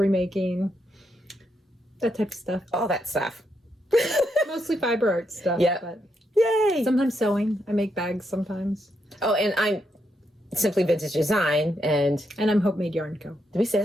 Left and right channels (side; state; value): both; normal; correlation 0.80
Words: making, that type of stuff. All that stuff. Mostly fiber art stuff. Yeah. But Yay. sometimes sewing. I make bags sometimes. Oh, and I'm Simply Vintage Design. And I'm Hopemade.co. Did we say